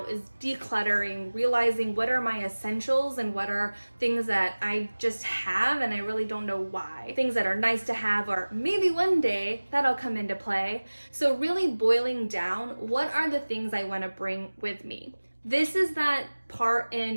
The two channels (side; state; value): both; inverted; correlation -1.00